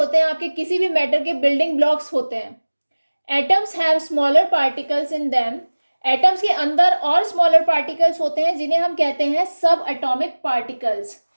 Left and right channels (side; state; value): both; inverted; correlation -1.00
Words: हैं आपके किसी भी मैटर के बिल्डिंग ब्लॉक्स होते हैं। Atoms have smaller particles in them. Atoms के अंदर और स्मॉलर पार्टिकल्स होते हैं जिन्हें हम कहते हैं सब एटॉमिक पार्टिकल्स।